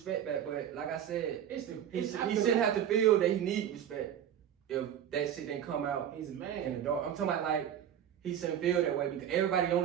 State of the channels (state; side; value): quieter; left; 9.8 dB